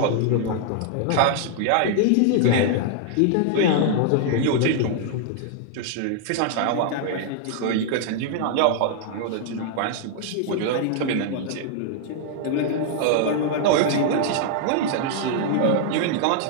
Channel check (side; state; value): both; different; correlation -0.01